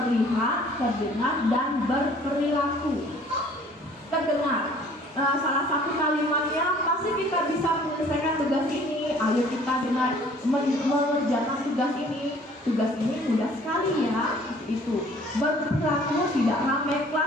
terdengar, dan berperilaku. Terdengar, salah satu kalimatnya pasti kita bisa menyelesaikan tugas ini. Ayo kita dengar mengerjakan tugas ini. Tugas ini mudah sekali ya. Itu berperilaku tidak ramai,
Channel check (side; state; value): both; normal; correlation 0.54